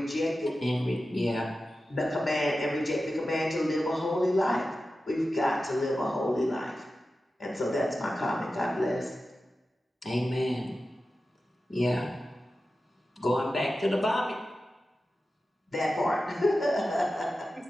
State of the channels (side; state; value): both; normal; correlation 0.93